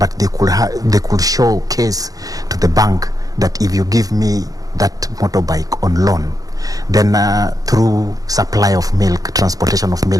they could showcase to the bank that if you give me that motorbike on loan, then through supply of milk, transportation of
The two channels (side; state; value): left; late; 0.17 ms